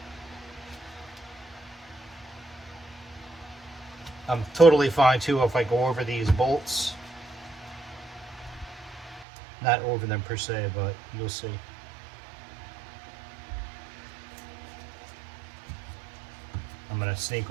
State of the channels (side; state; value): left; drops out; at 9.2 s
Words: I'm totally fine too if I go over these bolts. Not over them per se, but you'll see. I'm going to sneak